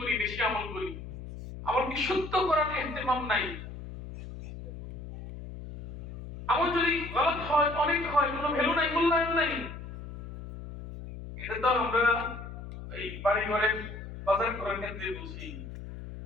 বেশি আমল করি, আমল কি সত্য করার ইহতিমাম নাই। আমল যদি গলত হয়, অনেক হয়, কোনো ভ্যালু নাই, মূল্যায়ন নাই। এটা তো আমরা এই বাড়ি ঘরে বাজার করার ক্ষেত্রে বুঝি।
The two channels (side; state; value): left; noise; hum, 11 dB below the sound